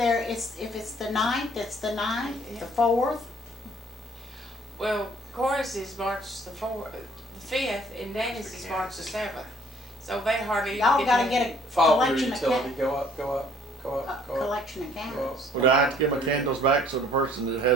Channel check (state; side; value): normal; both; correlation 0.59